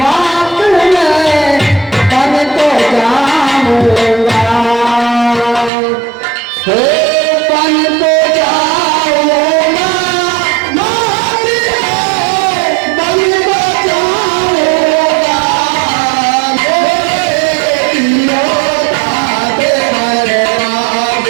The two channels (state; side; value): drops out; left; at 5.7 s